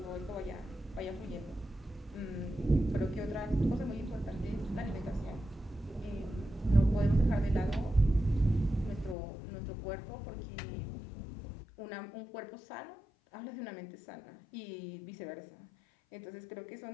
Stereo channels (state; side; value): drops out; right; at 9.2 s